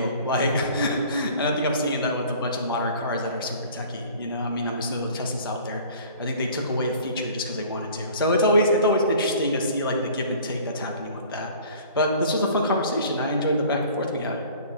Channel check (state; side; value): inverted; both; correlation -0.48